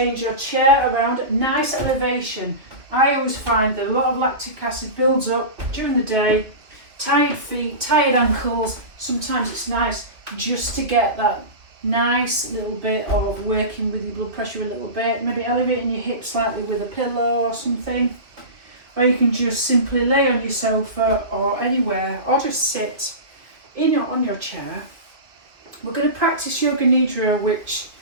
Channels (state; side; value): late; left; 2.3 ms